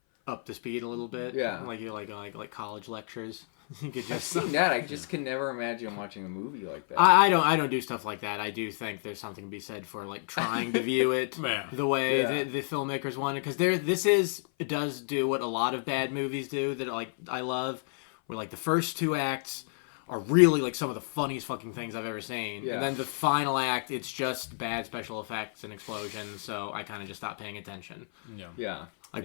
up the speed a little bit. Yeah. Like you like college lectures. You could I've just. seen that. I just can never imagine watching a movie like that. I don't do stuff like that. I do think there's something to be said for like trying to view it Yeah. the way Yeah. the filmmakers want it, because it does do what a lot of bad movies do that like I love, where like the first two acts are really like some of the funniest fucking things I've ever seen, Yeah. and then the final act it's just bad special effects and explosions. So I kind of just stopped paying attention. Yeah. Yeah. Like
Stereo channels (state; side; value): silent; right; 58 dB below the other